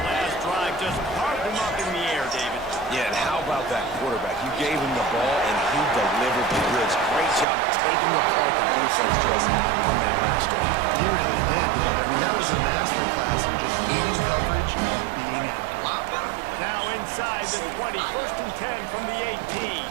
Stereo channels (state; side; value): drops out; left; at 7.5 s